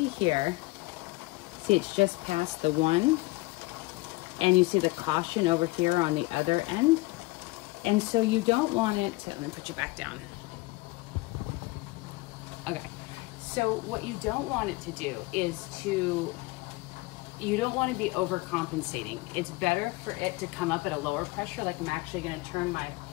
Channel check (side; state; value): right; quieter; 22.2 dB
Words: here, see it's just past the 1, and you see the caution over here on the other end. And so you don't want it to, let me put you back down. Okay, so what you don't want it to do is you don't want to be overcompensating. It's better for it to come up at a lower pressure. Like I'm actually going to turn